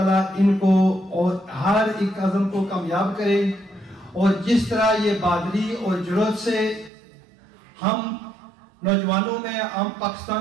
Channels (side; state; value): left; drops out; at 6.9 s